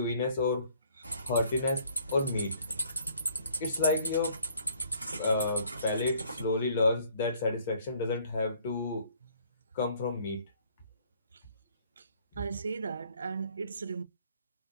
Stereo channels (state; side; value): inverted; both; correlation -0.60